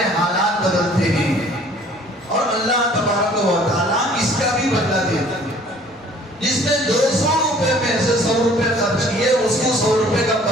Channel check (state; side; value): normal; both; correlation 0.54